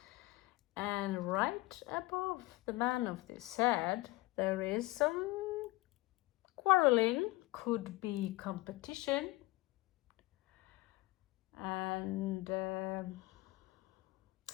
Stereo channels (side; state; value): right; quieter; 20.5 dB